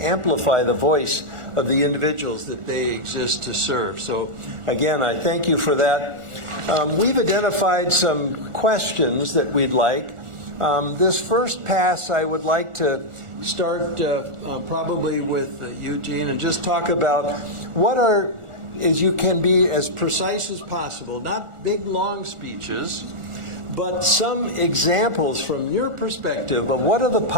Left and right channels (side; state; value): left; late; 1.4 ms